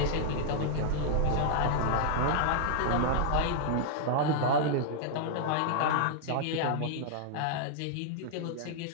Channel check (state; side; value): different; both; correlation -0.01